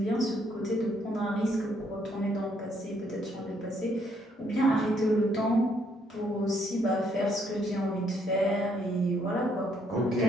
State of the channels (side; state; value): both; normal; correlation 0.70